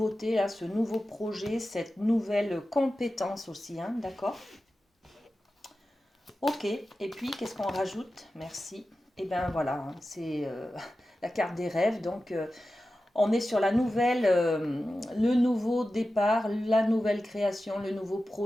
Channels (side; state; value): both; normal; correlation 0.93